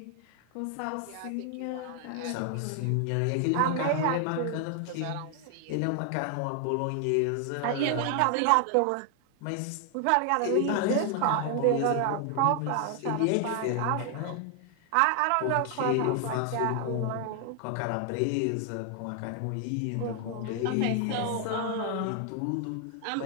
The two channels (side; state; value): both; different; correlation 0.00